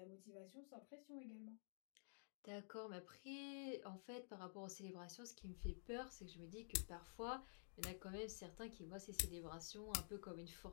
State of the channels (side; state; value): right; silent; digital silence